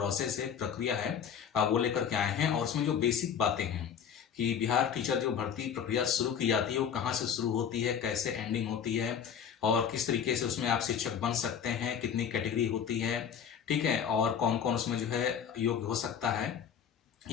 है, प्रक्रिया है, वो लेकर के आए हैं। और उसमें जो बेसिक बातें हैं कि बिहार टीचर जो भर्ती प्रक्रिया शुरू की जाती है वो कहाँ से शुरू होती है, कैसे एंडिंग होती है, और किस तरीके से उसमें आप शिक्षक बन सकते हैं, कितनी कैटेगरी होती है, ठीक है, और कौन कौन उसमें जो है योग्य हो सकता है।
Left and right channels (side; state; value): right; quieter; 8.0 dB